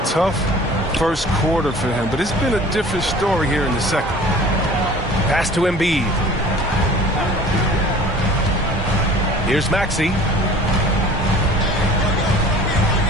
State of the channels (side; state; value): both; normal; correlation 0.45